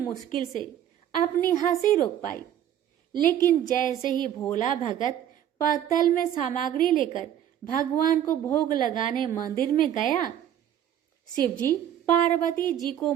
से अपनी हंसी रोक पाई, लेकिन जैसे ही भोला भगत पत्तल में सामग्री लेकर भगवान को भोग लगाने मंदिर में गया, शिवजी पार्वती जी को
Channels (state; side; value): quieter; left; 10.5 dB